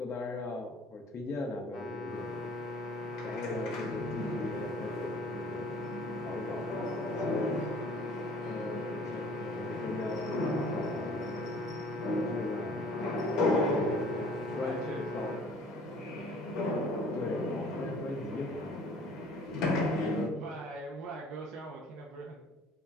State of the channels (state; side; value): normal; both; correlation 0.52